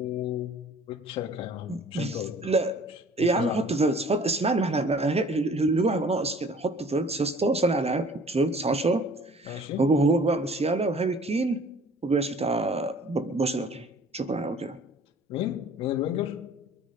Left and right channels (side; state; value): both; normal; correlation 0.51